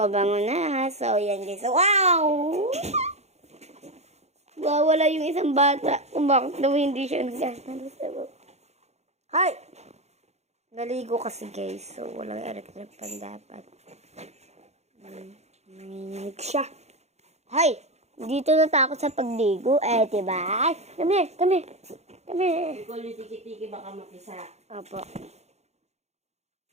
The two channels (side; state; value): left; late; 0.32 ms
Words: na. So, yan guys. Wow! Wala yung isang bata. Kung bakit daw hindi siya nagkakaroon. Hi! Naligo kasi guys. So, walang electric pan dapat. Nanginig siya. Hi! Dito natakot sa pagligo. Diba? Come here. Ikaw yung tiki-tiki baka makisa. Opo.